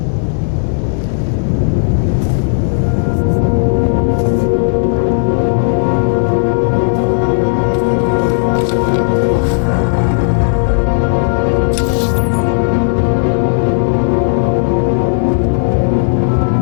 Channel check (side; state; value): right; silent; digital silence